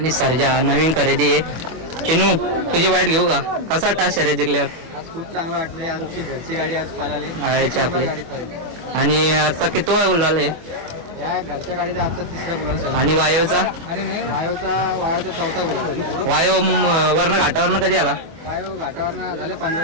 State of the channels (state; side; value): late; left; 24 ms